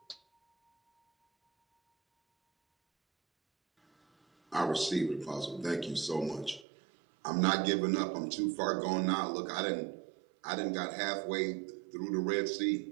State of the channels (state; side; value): drops out; left; at 6.7 s